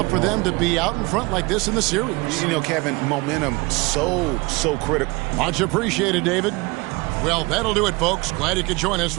for them to be out in front like this in the series. You know, Kevin, momentum so critical. Much appreciated, David. Well, that'll do it, folks. Glad you could join us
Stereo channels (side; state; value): left; quieter; 25.0 dB